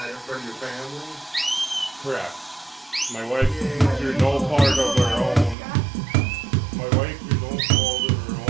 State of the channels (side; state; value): left; drops out; at 5.6 s